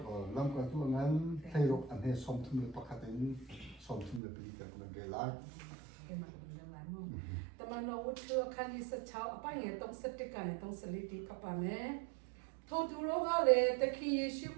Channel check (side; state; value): left; drops out; at 4.2 s